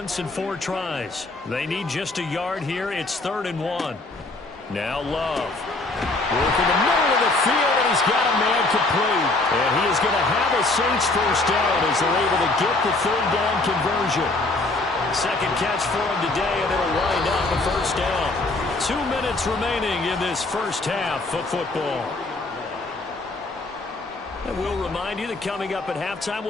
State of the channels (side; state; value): right; quieter; 3.1 dB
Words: in 4 tries. They need just a yard here. It's 3rd and 1. Now Love. Work in the middle of the field, and he's got a man complete. And he is going to have a Saints first down as they're able to get the 3rd down conversion. Second catch for him today, and it'll wind up a first down. 2 minutes remaining in this first half of football. And we'll remind you that coming up at halftime,